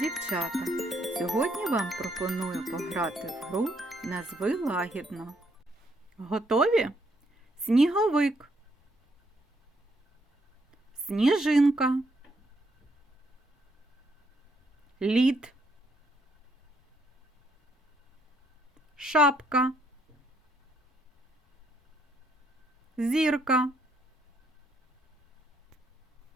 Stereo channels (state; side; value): normal; both; correlation 0.72